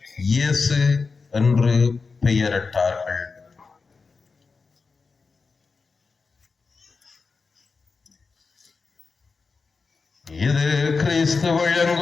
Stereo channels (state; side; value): quieter; right; 4.6 dB